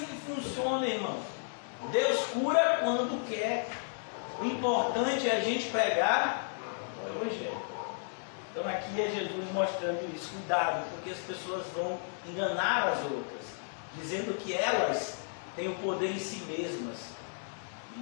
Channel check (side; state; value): right; silent; digital silence